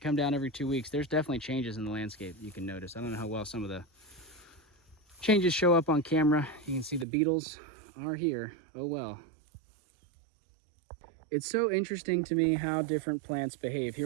come down every 2 weeks, there's definitely changes in the landscape you can notice. I don't know how well some of the changes show up on camera. You can see the beetles are here. Oh well. It's so interesting to me how different plants behave.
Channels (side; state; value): left; drops out; at 7.1 s